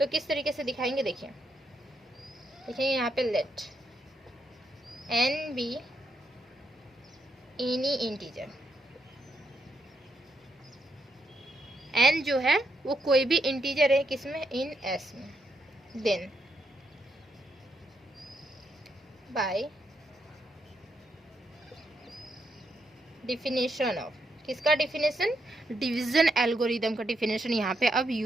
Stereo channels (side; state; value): both; normal; correlation 0.79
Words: किस तरीके से दिखाएंगे देखिए, देखिए यहाँ पे let n be any integer, n जो है वो कोई भी इंटीजर है किसमें, इन एस में। देन बाय डिफिनेशन ऑफ, किसका डिफिनेशन, डिवीजन एल्गोरिदम का डिफिनेशन यहाँ पे अब